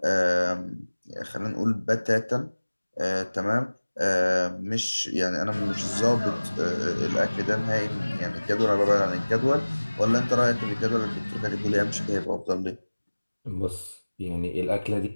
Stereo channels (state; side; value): inverted; both; correlation -1.00